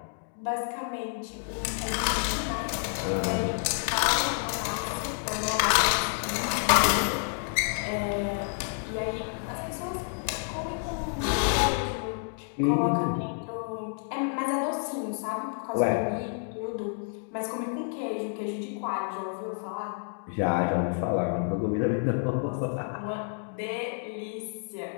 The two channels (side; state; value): right; silent; 58 dB below the other